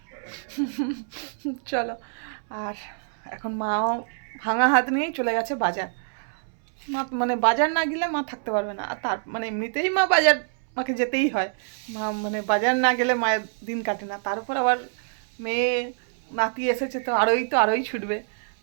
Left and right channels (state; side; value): silent; left; 61 dB below the other